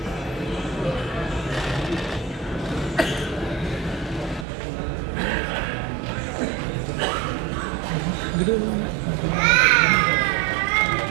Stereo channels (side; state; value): left; drops out; at 4.5 s